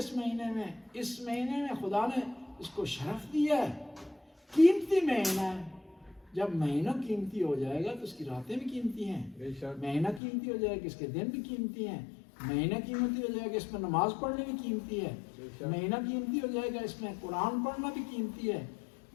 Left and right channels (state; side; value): drops out; right; at 10.2 s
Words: مہینے میں. اس مہینے میں خدا نے اس کو شرف دیا ہے. قیمتی مہینہ ہے. جب مہینہ قیمتی ہو جائے گا تو اس کی راتیں بھی قیمتی ہیں. مہینہ قیمتی ہو جائے گا اس کے دن بھی قیمتی ہیں. مہینہ قیمتی ہو جائے گا اس میں نماز پڑھنے بھی قیمتی ہے. مہینہ قیمتی ہو جائے گا اس میں قرآن پڑھنا بھی قیمتی ہے.